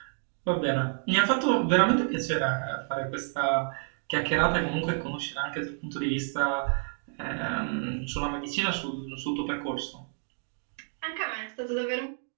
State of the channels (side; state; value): left; silent; 58 dB below the other